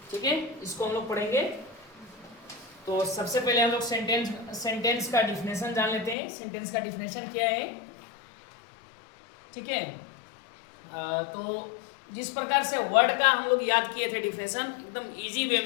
ठीक है, इसको हम लोग पढ़ेंगे। तो सबसे पहले हम लोग सेंटेंस का डिफिनेशन जान लेते हैं। सेंटेंस का डिफिनेशन क्या है? ठीक है, तो जिस प्रकार से वर्ड का हम लोग याद किए थे डिफिनेशन, एकदम इजी वे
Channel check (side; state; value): right; drops out; at 6.2 s